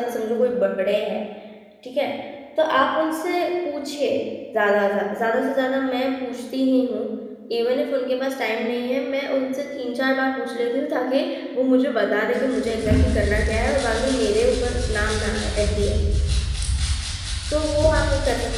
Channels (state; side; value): identical; both; correlation 1.00